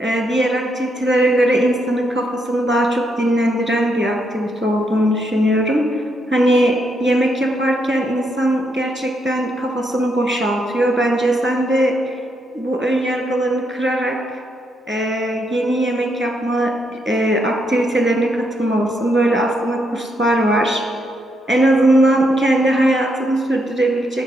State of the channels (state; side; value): normal; both; correlation 0.78